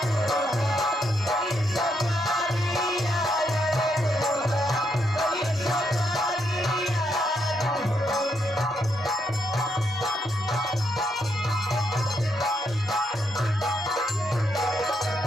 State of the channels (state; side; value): normal; both; correlation 0.78